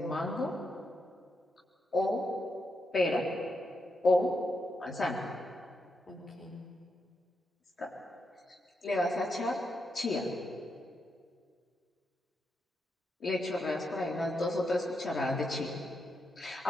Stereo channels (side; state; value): both; normal; correlation 0.83